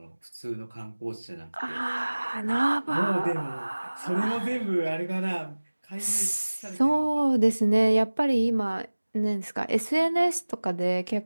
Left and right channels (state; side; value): inverted; both; correlation -1.00